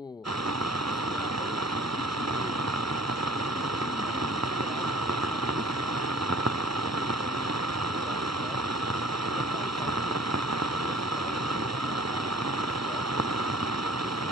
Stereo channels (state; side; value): normal; both; correlation 0.50